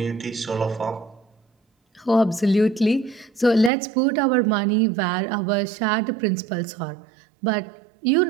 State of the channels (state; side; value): drops out; left; at 3.7 s